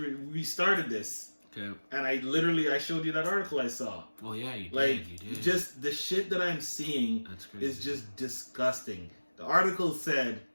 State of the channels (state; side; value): inverted; both; correlation -1.00